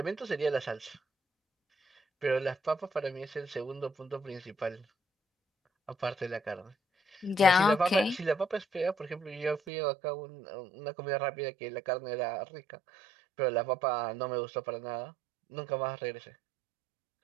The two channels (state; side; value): drops out; left; at 9.6 s